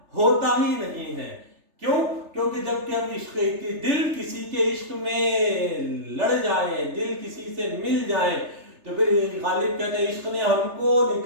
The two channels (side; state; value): left; late; 3.3 ms